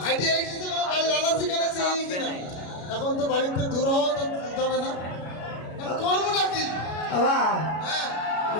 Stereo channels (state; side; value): late; right; 33 ms